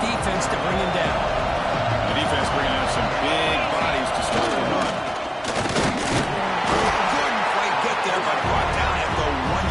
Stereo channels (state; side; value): identical; both; correlation 1.00